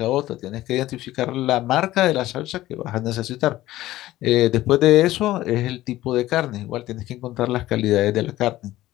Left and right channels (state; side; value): quieter; right; 15.7 dB